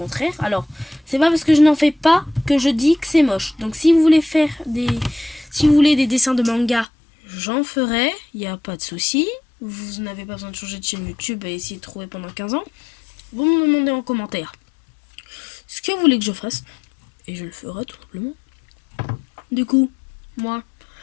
Alors, c'est pas parce que je n'en fais pas que je dis que c'est moche. Donc si vous voulez faire si vous voulez des dessins de manga, j'en ferai, il n'y a pas de souci. Vous n'avez pas besoin de changer de chaîne YouTube et essayer de trouver pendant 15 ans. Vous me demandez en commentaire ce que vous voulez que je fasse et je le ferai tout simplement. Du coup, moi,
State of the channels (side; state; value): right; drops out; at 6.9 s